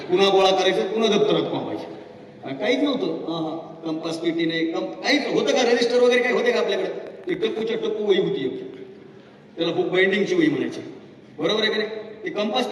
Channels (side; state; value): both; identical; correlation 1.00